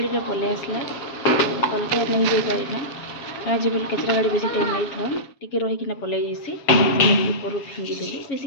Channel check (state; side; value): late; right; 7.2 ms